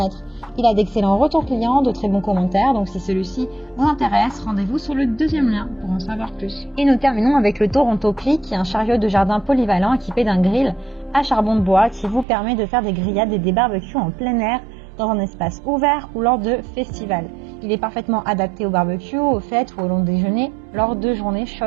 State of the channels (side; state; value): left; drops out; at 12.2 s